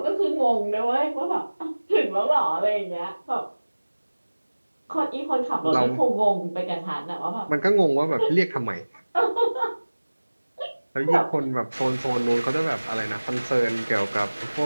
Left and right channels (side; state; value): both; inverted; correlation -1.00